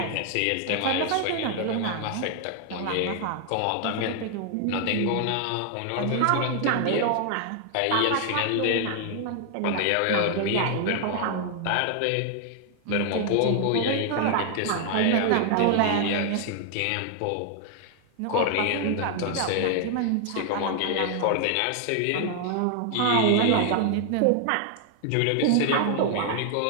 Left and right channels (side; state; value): both; different; correlation 0.00